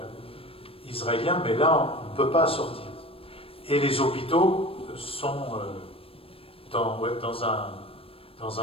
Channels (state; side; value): late; right; 0.27 ms